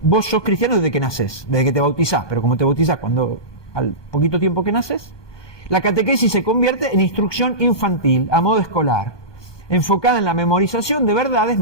Vos sos cristiano desde que nacés, desde que te bautizás, pero como te bautizás al poquito tiempo que naces, la catequesis se convierte en instrucción infantil, a modo escolar, enfocada en la memorización de verdades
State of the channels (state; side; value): late; right; 1.2 ms